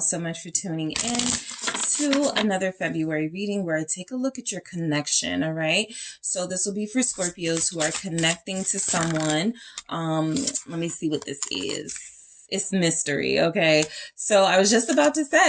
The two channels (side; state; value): both; identical; correlation 1.00